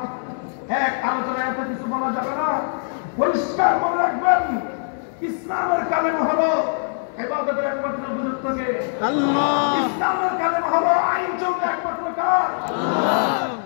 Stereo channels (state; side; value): silent; right; digital silence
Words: এক আলোচনায় এত কিছু বলা যাবে না। পরিষ্কার মনে রাখবেন, ইসলামের কালেমা হলো ইবাদতের একমাত্র গুরুত্বকে আল্লাহ, ইসলামের কালেমা হলো আইন চলবে একমাত্র কার আল্লাহ।